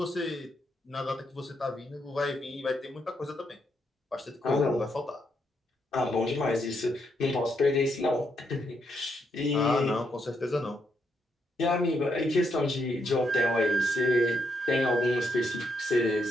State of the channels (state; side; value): normal; both; correlation 0.78